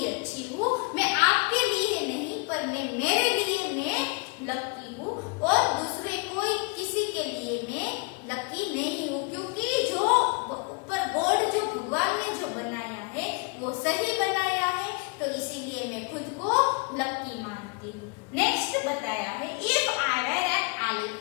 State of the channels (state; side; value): quieter; right; 31.4 dB